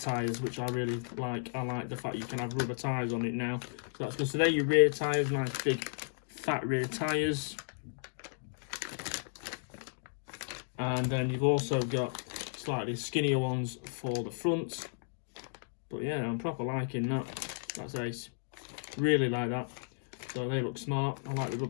which I really like. I like the fact you can have rubber tyres on it now. So that's good. So they're your rear tyres, nice big fat rear tyres. And then you've also got slightly skinnier ones for the front. But yeah, I'm proper liking that. That's ace. Really like that. So they look smart. I like the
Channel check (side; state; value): right; silent; digital silence